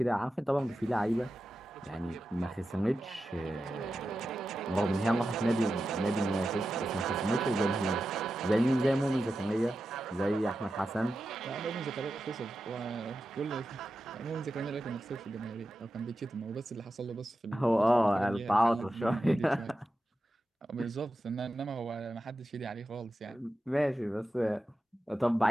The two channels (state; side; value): normal; both; correlation 0.91